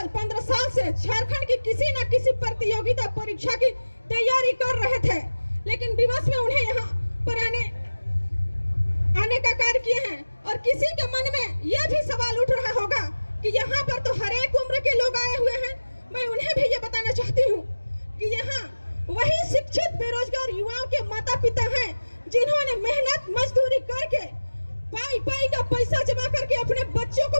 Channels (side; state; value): both; inverted; correlation -1.00